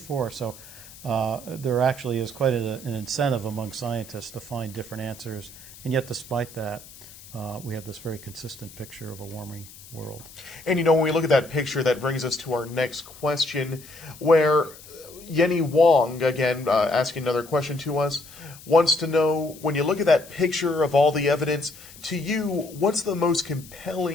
So there actually is quite an incentive among scientists to find different answers. And yet despite that, we have this very consistent picture of a warming world. And when we look at that picture, that brings us to our next question, where Yenny Wong, again, asking another question to us, wants to know, when you look at that picture of all the evidence, to you, what's the most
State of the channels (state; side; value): noise; left; hiss, 19 dB below the sound